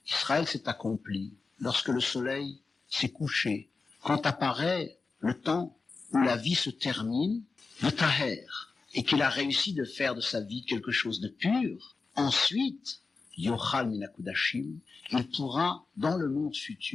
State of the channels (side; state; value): right; quieter; 4.3 dB